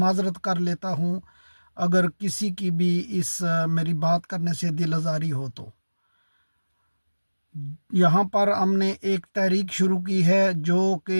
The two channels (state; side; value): inverted; both; correlation -1.00